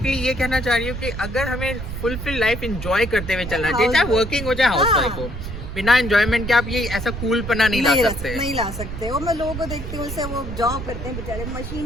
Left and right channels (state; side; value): noise; right; rumble, 7 dB below the sound